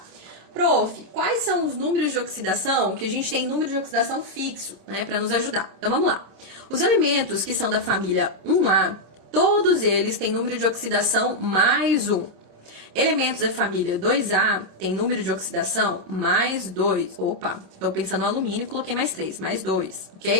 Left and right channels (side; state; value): left; late; 26 ms